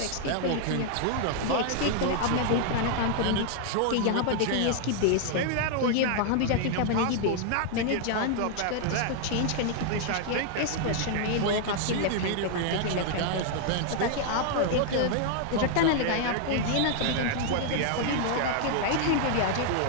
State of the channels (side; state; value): both; different; correlation 0.00